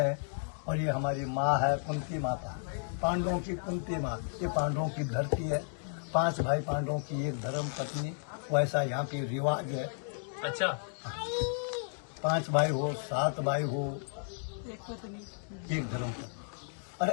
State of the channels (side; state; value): right; silent; digital silence